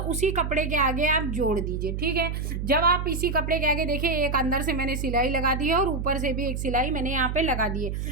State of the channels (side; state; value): right; noise; hum, 3 dB below the sound